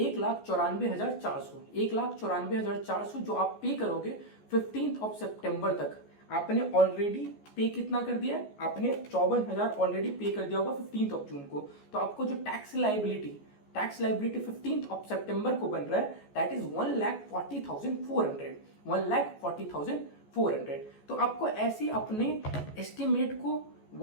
1,94,400 जो आप पे करोगे 15 सितंबर तक। आपने ऑलरेडी पे कितना कर दिया है? आपने 54,000 ऑलरेडी पे कर दिया होगा 15 जून को। तो आपको जो टैक्स लाइबिलिटी 15 सितंबर को बन रहा है, दैट इज 1,40,400। 1,40,400। तो आपको ऐसे अपने एस्टिमेट को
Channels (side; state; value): right; late; 14 ms